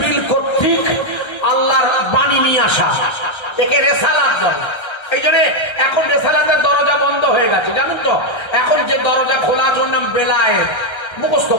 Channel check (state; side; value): late; right; 1.3 ms